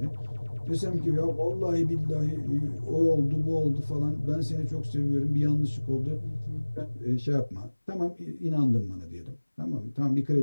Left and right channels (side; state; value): both; inverted; correlation -1.00